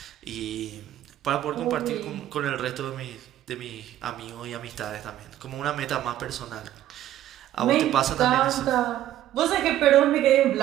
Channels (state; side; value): quieter; left; 12.7 dB